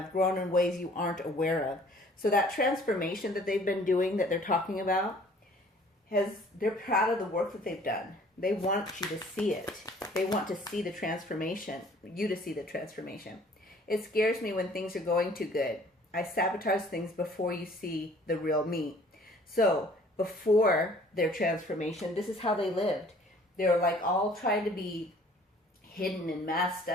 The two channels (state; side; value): normal; both; correlation 0.54